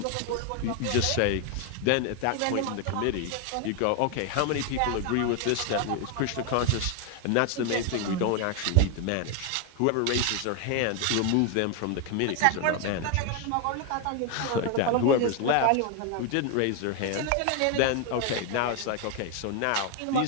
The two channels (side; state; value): both; different; correlation 0.01